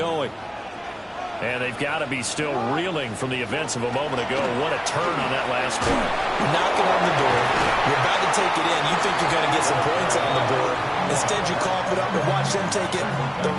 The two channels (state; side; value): identical; both; correlation 1.00